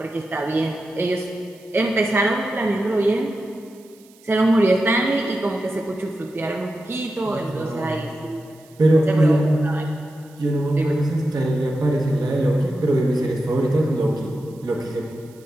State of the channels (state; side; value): noise; right; hiss, 28 dB below the sound